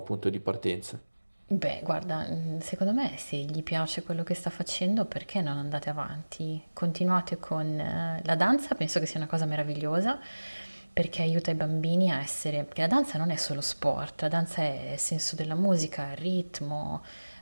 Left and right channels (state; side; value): inverted; both; correlation -1.00